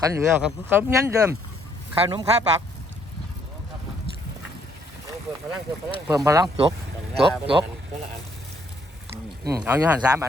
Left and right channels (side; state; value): both; normal; correlation 0.68